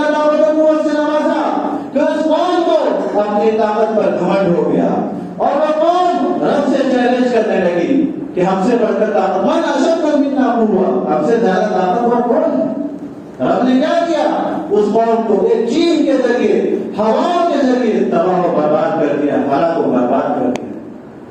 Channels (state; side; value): identical; both; correlation 1.00